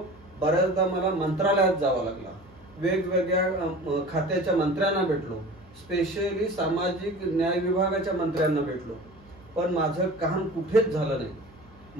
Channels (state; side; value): noise; right; hum, 25 dB below the sound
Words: बऱ्याचदा मला मंत्रालयात जावं लागला, वेगवेगळ्या खात्याच्या मंत्र्यांना भेटलो, स्पेशली सामाजिक न्याय विभागाच्या मंत्र्यांना भेटलो, पण माझं काम कुठेच झालं नाही.